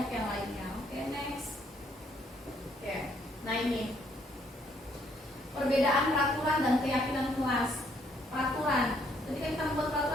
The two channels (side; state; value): both; normal; correlation 0.69